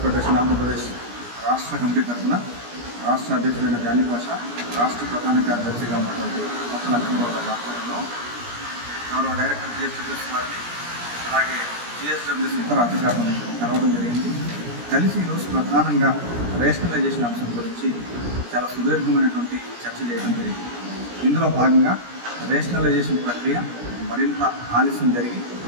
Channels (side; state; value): left; late; 17 ms